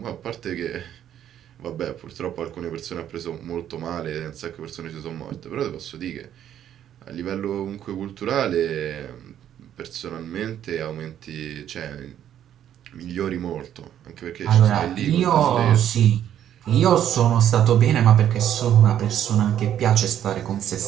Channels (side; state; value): left; quieter; 10.5 dB